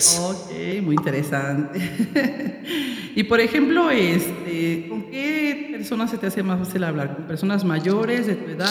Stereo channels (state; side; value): identical; both; correlation 1.00